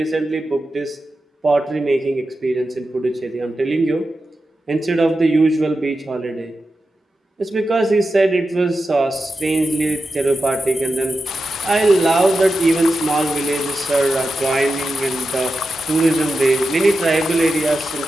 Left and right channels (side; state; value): both; normal; correlation 0.91